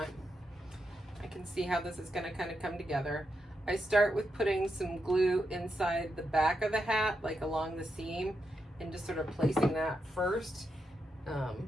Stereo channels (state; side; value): normal; both; correlation 0.85